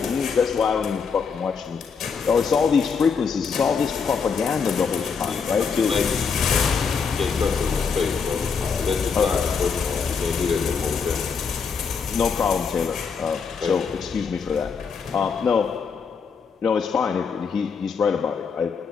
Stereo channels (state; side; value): quieter; right; 5.8 dB